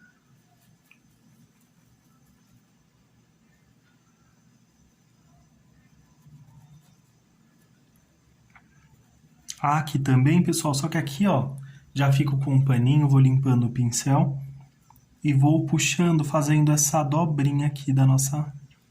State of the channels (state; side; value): identical; both; correlation 1.00